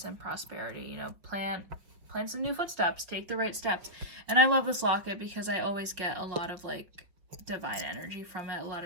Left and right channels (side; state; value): left; late; 5.3 ms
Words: and prosperity. You know, plant some new footsteps, take the right steps. And I love this locket because I always get a lot of like divine energy from it, a lot